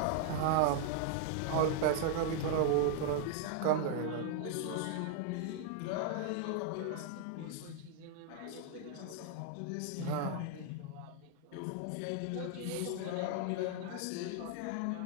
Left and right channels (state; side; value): different; both; correlation -0.01